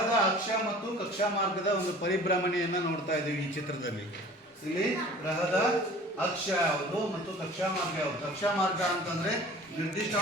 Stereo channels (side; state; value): both; normal; correlation 0.45